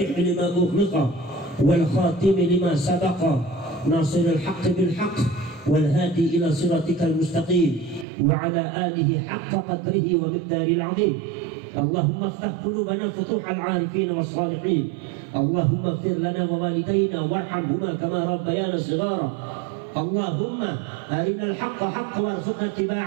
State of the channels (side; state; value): left; drops out; at 8.1 s